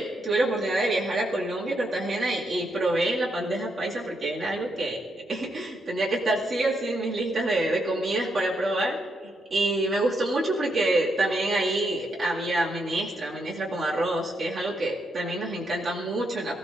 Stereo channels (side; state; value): both; normal; correlation 0.79